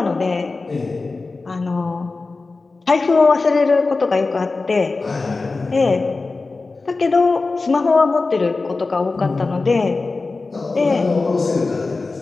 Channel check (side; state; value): right; quieter; 3.7 dB